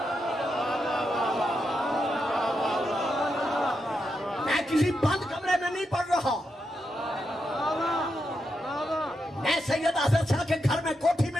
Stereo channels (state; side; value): normal; both; correlation 0.84